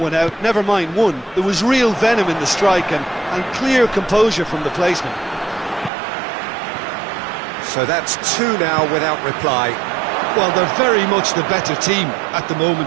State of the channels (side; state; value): left; drops out; at 5.9 s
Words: out, never mind one. There was real venom in the strike and clear composure from the placement. So that's two now without reply. Well, they're very much the better team at the